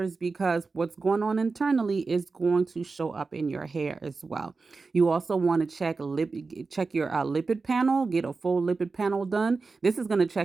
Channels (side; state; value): left; quieter; 4.2 dB